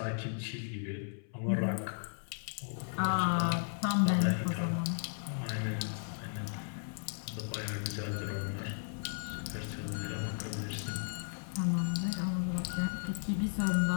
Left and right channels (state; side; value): silent; right; 54 dB below the other